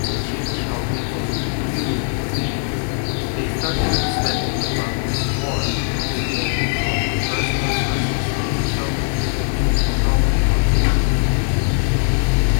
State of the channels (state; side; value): silent; right; digital silence